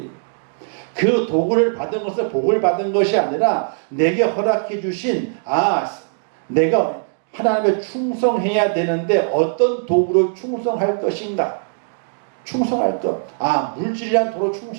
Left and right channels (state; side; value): silent; left; digital silence